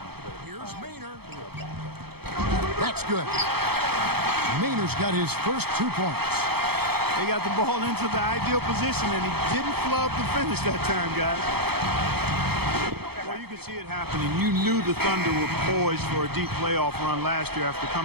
Here's Maynard. That's good. Maynard's got his first 2 points. They got the ball into the ideal position, and he didn't flub the finish that time, guys. Well, you could see it happening. You knew the Thunder were poised for a deep playoff run last year after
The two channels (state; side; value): late; left; 0.96 ms